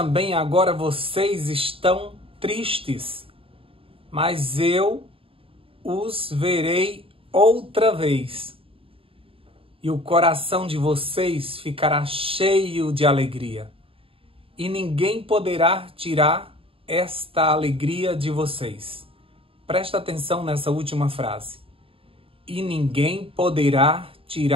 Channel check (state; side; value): late; left; 0.27 ms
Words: agora vocês estão tristes, mas eu os verei outra vez, e o coração de vocês ficará cheio de alegria, e ninguém poderá tirar esta alegria de vocês. Presta atenção nessa última frase. E ninguém poderá